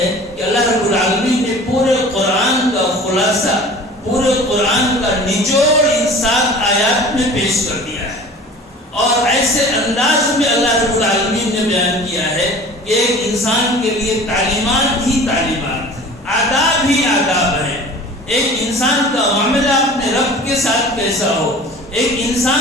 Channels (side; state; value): both; normal; correlation 0.42